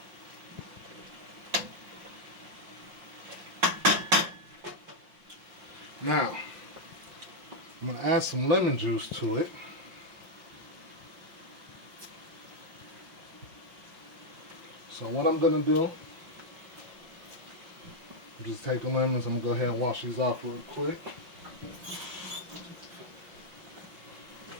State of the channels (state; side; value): late; left; 5.6 ms